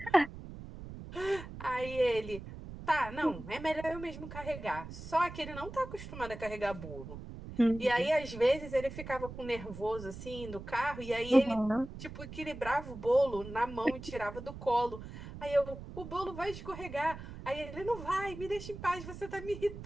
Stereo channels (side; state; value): right; noise; rumble, 12 dB below the sound